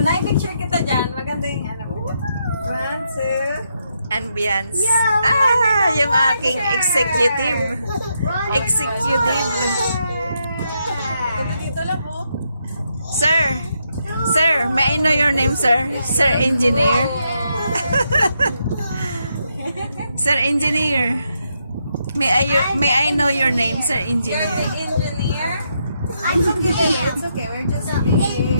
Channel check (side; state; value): both; inverted; correlation -0.79